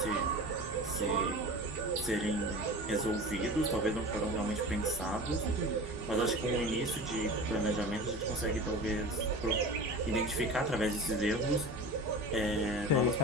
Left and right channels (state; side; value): normal; both; correlation 0.34